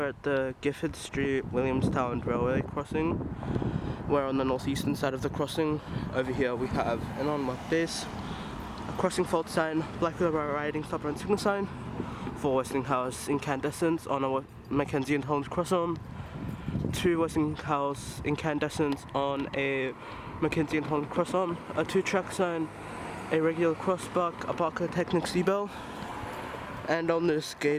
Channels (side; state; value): both; identical; correlation 1.00